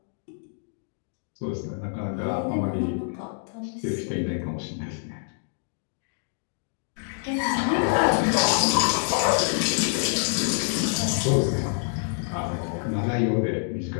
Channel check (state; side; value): silent; right; digital silence